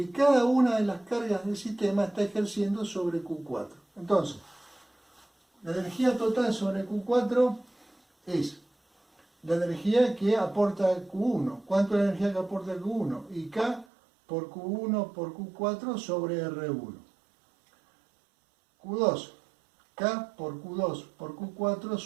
cada una de las cargas del sistema está ejerciendo sobre Q4. Entonces, la energía total sobre Q4 es la energía que aporta Q1. ¿Cuánto es la energía que aporta Q1? Y K por Q1 por Q4 sobre R1. Q2. K por Q2 por Q4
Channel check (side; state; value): left; drops out; at 13.9 s